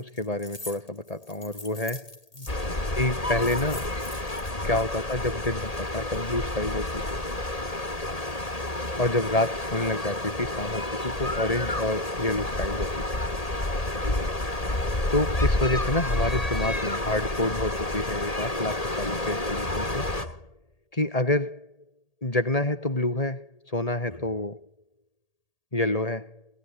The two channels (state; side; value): late; right; 1.8 ms